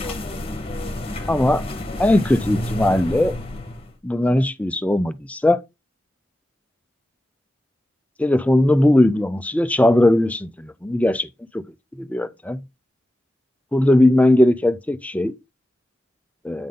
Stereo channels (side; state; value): both; normal; correlation 0.93